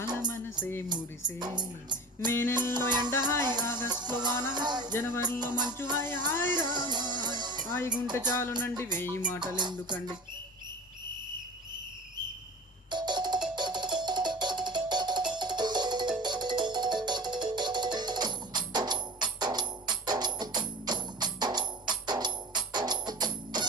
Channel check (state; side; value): normal; both; correlation 0.36